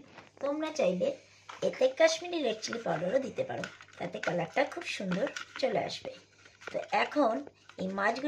তোমরা চাইলে এতে কাশ্মীরি রেড চিলি পাউডারও দিতে পারো, তাতে কালারটা খুব সুন্দর চলে আসবে। তো এখন এই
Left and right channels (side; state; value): both; identical; correlation 1.00